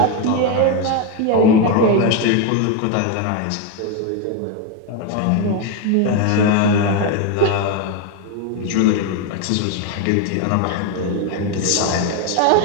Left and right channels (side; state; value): both; different; correlation 0.02